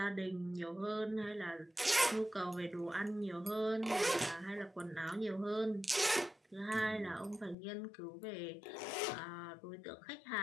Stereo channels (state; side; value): drops out; right; at 7.6 s